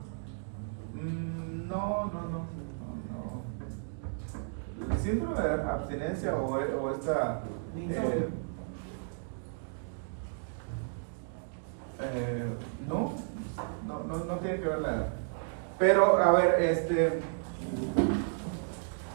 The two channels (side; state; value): left; silent; digital silence